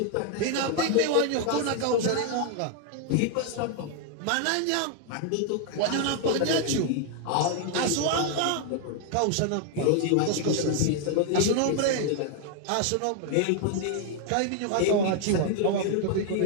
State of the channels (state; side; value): different; both; correlation 0.00